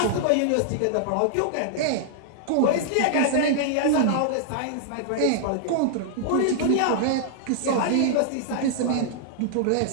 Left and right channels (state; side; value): different; both; correlation -0.01